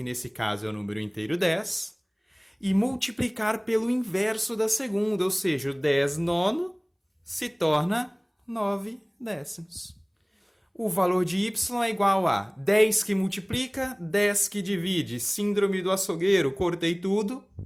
nesse caso é o número inteiro 10, e multiplicar pelo inverso da segunda, ou seja, o 10 nono se torna 9 décimos. O valor de y é igual a 10 que multiplica, 10 que divide. Síndrome do açougueiro, cortei tudo.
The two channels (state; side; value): identical; both; correlation 1.00